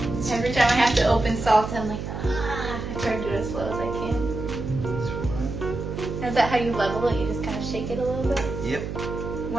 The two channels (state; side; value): noise; right; hum, 6 dB below the sound